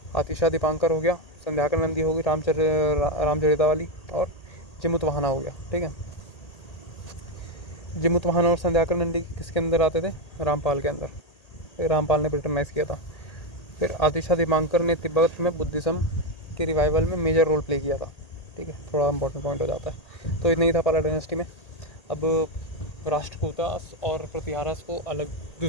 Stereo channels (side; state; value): right; late; 1.8 ms